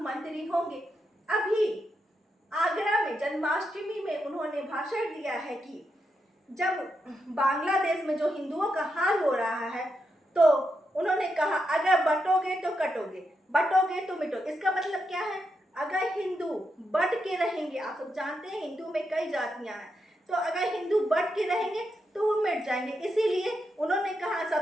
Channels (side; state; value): both; normal; correlation 0.84